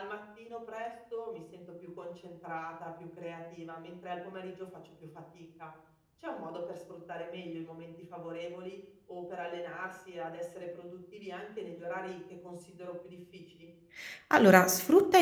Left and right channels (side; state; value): both; identical; correlation 1.00